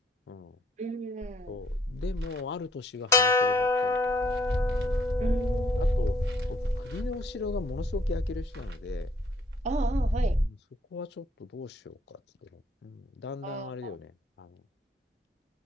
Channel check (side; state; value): both; normal; correlation 0.66